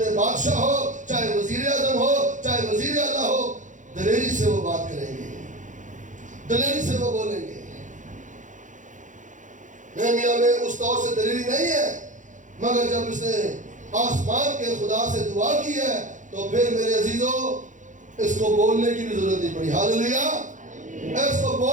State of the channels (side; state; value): left; late; 0.36 ms